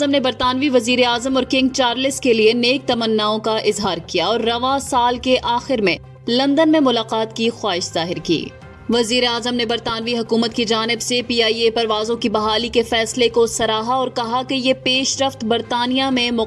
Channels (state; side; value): identical; both; correlation 1.00